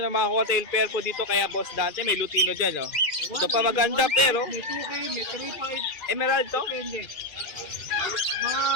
mga hotel pair po dito. Kaya Boss Dante, may Lutino dyan, Ito pa maganda, pero May 2K, may 3.5. Emerald to? Depende. Mga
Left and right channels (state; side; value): late; right; 2.3 ms